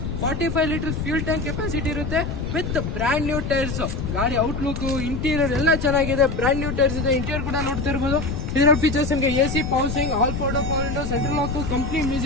45 ಲೀಟರ್ಸ್ ಫ್ಯೂಲ್ ಟ್ಯಾಂಕ್ ಕೆಪಾಸಿಟಿ ಇರುತ್ತೆ ವಿತ್ ಬ್ರ್ಯಾಂಡ್ ನ್ಯೂ ಟೈರ್ಸ್. ಗಾಡಿ ಔಟ್ಲುಕ್, ಇಂಟೀರಿಯರ್ ಎಲ್ಲ ಚೆನ್ನಾಗಿದೆ. ಬ್ರ್ಯಾಂಡ್ ನ್ಯೂ ಟೈರ್ಸ್ ಇದೆ. ಇಂಟೀರಿಯರ್ ಕೂಡ ನೋಡ್ತಾ ಇರ್ಬೋದು. ಇದರ ಫೀಚರ್ಸ್ ನಿಮಗೆ AC power, all four door power window, central lock, company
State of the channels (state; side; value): noise; left; rumble, 4 dB below the sound